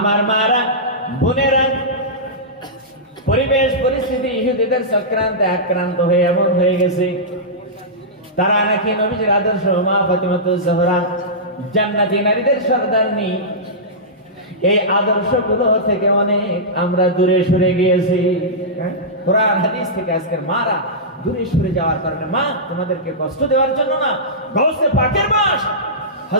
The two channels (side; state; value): both; normal; correlation -0.15